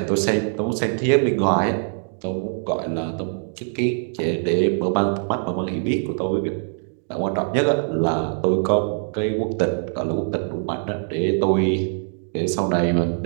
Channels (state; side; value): silent; left; digital silence